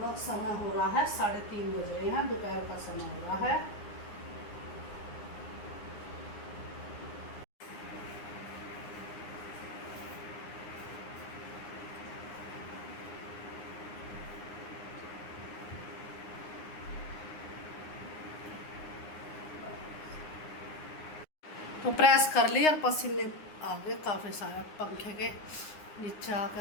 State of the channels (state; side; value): late; right; 9.7 ms